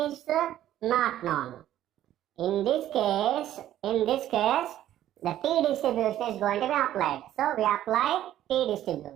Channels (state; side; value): quieter; left; 12.5 dB